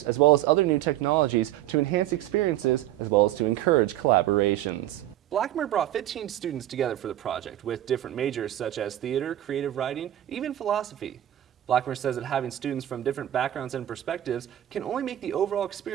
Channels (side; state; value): left; quieter; 13.2 dB